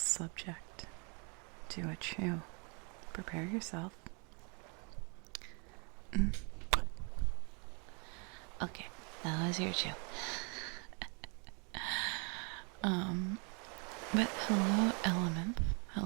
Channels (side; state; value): left; quieter; 34.7 dB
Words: to a chew. Prepare yourself. Okay, that was your chew. But hello, Element.